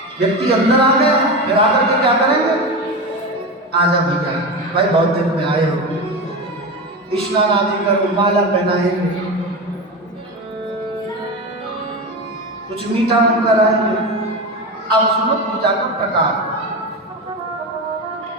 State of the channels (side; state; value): both; normal; correlation 0.21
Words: व्यक्ति अंदर आ गया, फिर आकर के क्या करेंगे, आजा भैया भाई बहुत दिन में आए हो, स्नान आदि करो, माला पहनाएंगे, कुछ मीठा मुंह कराएंगे। अब सुनो पूजा का प्रकार,